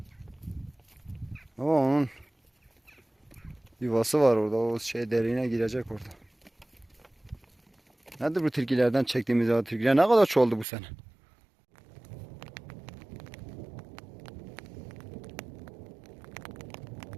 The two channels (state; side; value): drops out; left; at 10.7 s